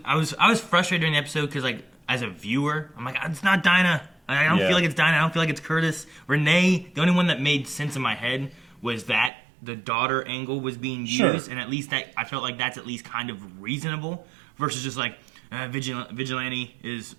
frustrated during the episode because, like, as a viewer, I'm like, it's not Dinah. I don't feel like it's Dinah. I don't feel like it's Curtis. Renee, the only one that made sense in my head was that the daughter angle was being used, and at least that I felt like that's at least kind of reasonable versus just like Vigilante is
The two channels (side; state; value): left; drops out; at 9.3 s